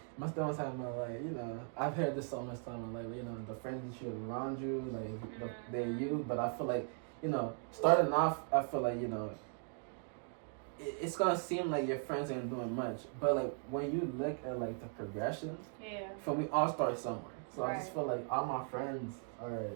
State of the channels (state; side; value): silent; left; 52 dB below the other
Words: my stomach's having like, you know, I've heard this so much time, like, you know, the friends that you have around you, like they're you. But I feel like, you know, starting off, I feel like, you know, it's gonna seem like your friends ain't doing much, but like when you look at like the progression, for me, all start somewhere. So I just feel like all my friends are